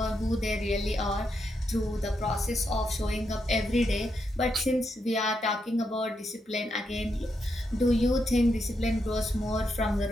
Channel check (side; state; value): both; normal; correlation 0.82